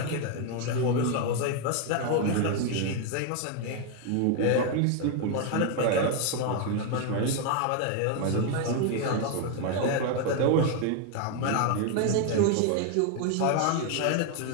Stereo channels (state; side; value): different; both; correlation 0.01